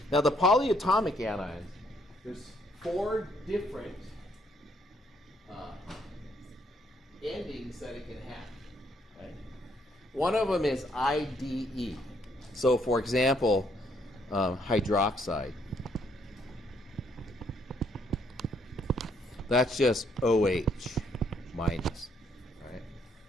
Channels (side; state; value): both; normal; correlation 0.70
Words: Now the polyatomic anions, there's 4 different endings that it can have. Right? One of them is IDE. So for example, hydroxide. That's just OH minus.